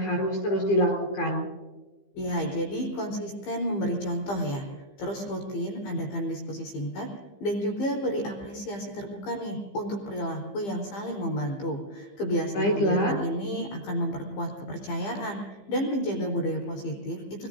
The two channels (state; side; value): late; right; 15 ms